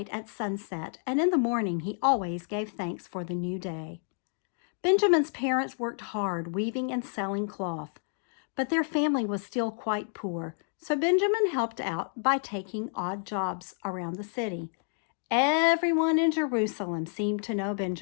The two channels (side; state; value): right; silent; 58 dB below the other